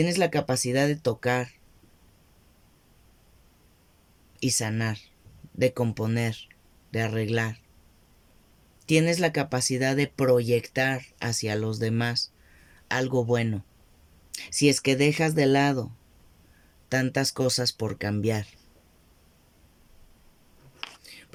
la capacidad de tocar, y sanar, de componer, de arreglar. Tienes la capacidad de proyectar hacia los demás algo bueno, si es que dejas de lado tantas cosas por cambiar.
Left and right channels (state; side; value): identical; both; correlation 1.00